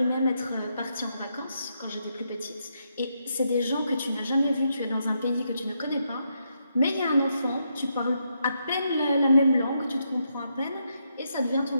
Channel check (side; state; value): both; inverted; correlation -0.80